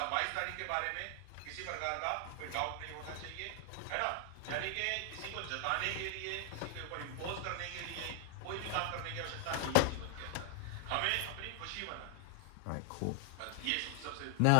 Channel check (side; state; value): both; different; correlation 0.00